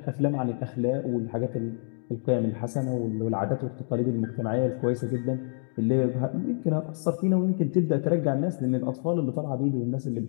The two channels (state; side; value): silent; right; 60 dB below the other